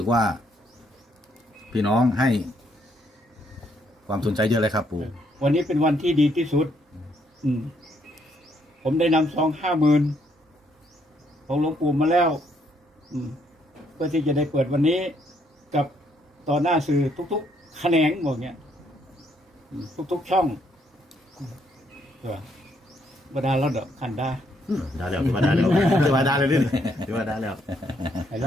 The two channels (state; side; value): normal; both; correlation 0.71